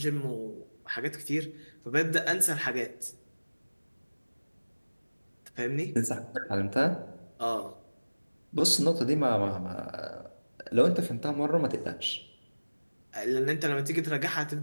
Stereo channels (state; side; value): inverted; both; correlation -1.00